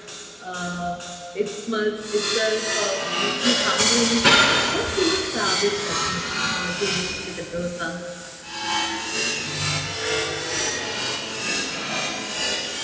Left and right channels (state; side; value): identical; both; correlation 1.00